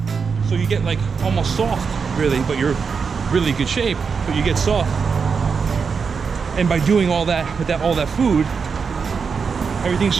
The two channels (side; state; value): left; quieter; 5.6 dB